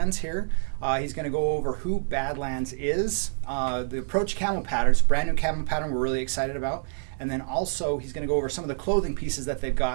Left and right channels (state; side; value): silent; left; digital silence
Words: here. He's going to go over who Badlands is, the Approach Camo Pattern. It's a brand new camo pattern we're really excited about. And then also he's going to go over some of the clothing pieces that they've